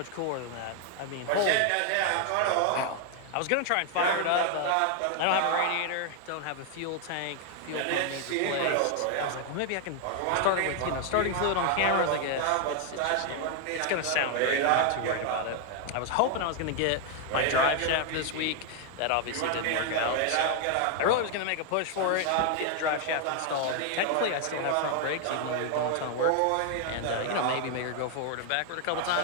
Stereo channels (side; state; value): both; different; correlation 0.00